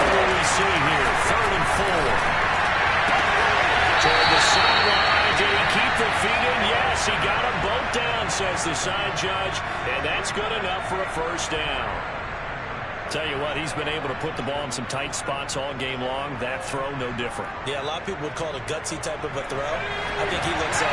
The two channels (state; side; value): identical; both; correlation 1.00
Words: will we see here? 3rd and 4. Toward the sideline. Did he keep the feet in? Yes, he got them both down, says the side judge. And that's good enough for a first down. Tell you what, he's been able to put the ball in some tight spots all game long. That throw, no different. Yeah, a lot of people would call it a gutsy type of a throw. I think he looks